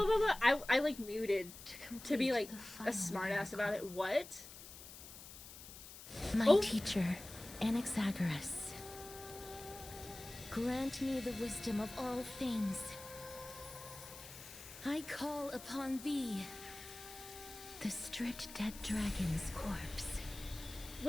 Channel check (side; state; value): left; noise; hiss, 14 dB below the sound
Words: I like muted to be like a smartass about it. What? My teacher, Anaxagoras, grant me the wisdom of all things. I call upon thee, the stripped dead dragon's corpse.